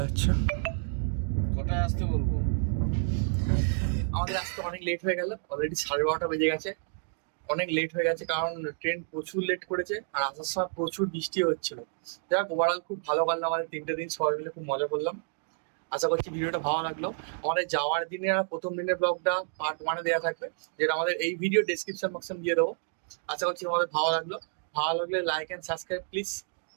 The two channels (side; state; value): left; silent; digital silence